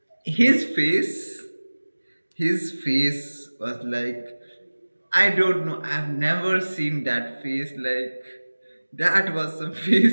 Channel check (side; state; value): both; inverted; correlation -1.00